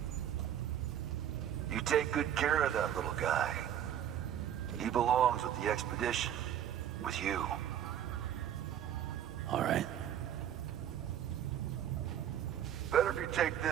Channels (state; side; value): quieter; left; 10.2 dB